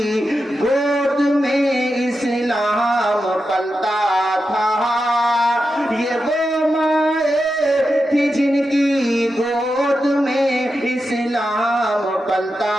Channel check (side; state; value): both; normal; correlation 0.89